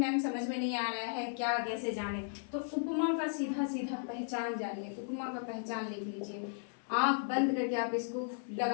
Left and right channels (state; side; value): silent; right; 54 dB below the other